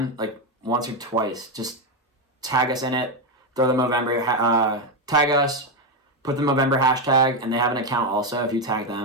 like once or twice, just tag us in it, throw the Movember, tag us, put the Movember hashtag, and they have an account also. If you tag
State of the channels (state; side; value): normal; both; correlation 0.08